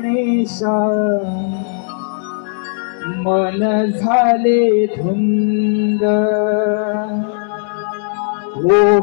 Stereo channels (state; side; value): silent; right; 69 dB below the other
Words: मन झाले धुंद। हो